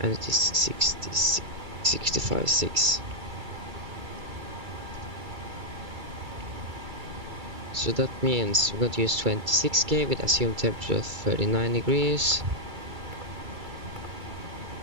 And it is 65.6. So that means we're going to use 26K with assumed temperature of 39 degrees.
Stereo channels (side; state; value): left; late; 2.3 ms